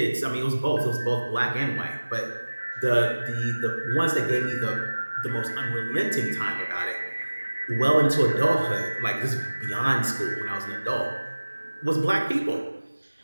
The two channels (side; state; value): both; inverted; correlation -1.00